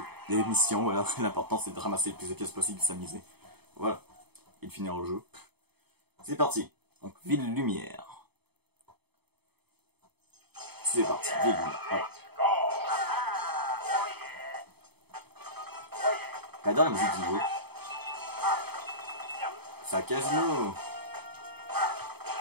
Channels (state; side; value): late; left; 0.97 ms